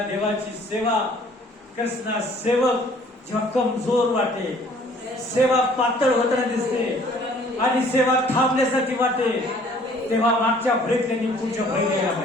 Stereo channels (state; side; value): normal; both; correlation 0.56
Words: देवाची सेवा करणारा सेवक जेव्हा कमजोर वाटे सेवा पातळ होताना दिसते आणि सेवा थांबल्यासारखी वाटे तेव्हा मागच्या फळीत त्यांनी पुढच्या फळीत यायला